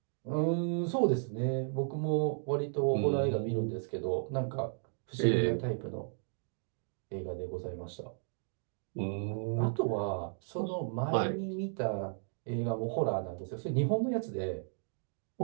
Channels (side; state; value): left; silent; digital silence